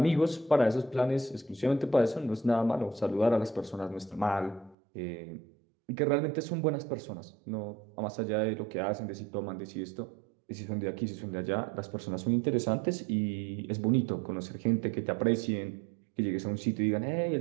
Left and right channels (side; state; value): left; drops out; at 4.8 s